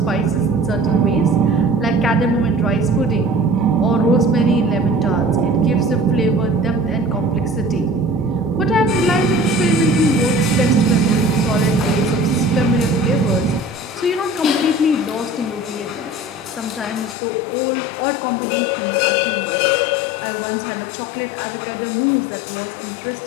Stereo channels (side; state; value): right; drops out; at 17.2 s